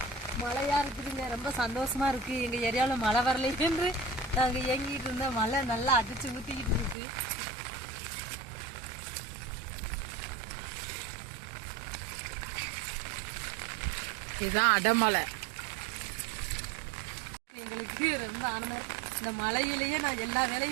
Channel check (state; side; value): drops out; left; at 7.0 s